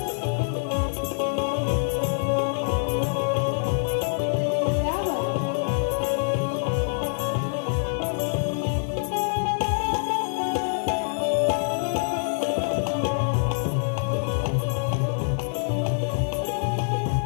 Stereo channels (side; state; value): right; silent; digital silence